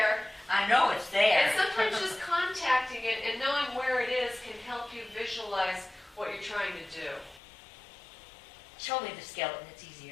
I know it's there. And sometimes just contacting it and knowing where it is can help you visualize what you're trying to do. Show me the skeleton, it's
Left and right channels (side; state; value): right; drops out; at 7.4 s